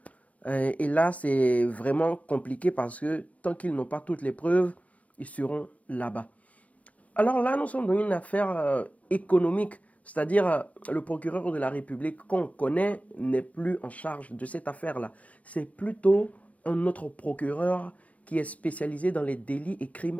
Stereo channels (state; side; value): late; right; 0.066 ms